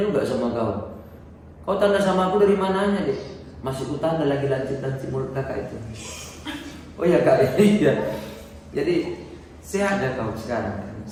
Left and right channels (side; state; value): both; identical; correlation 1.00